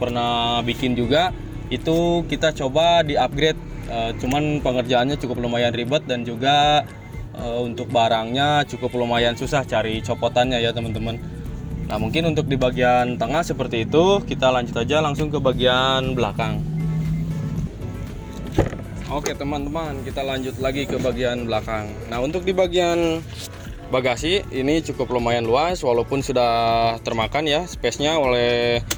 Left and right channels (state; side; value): identical; both; correlation 1.00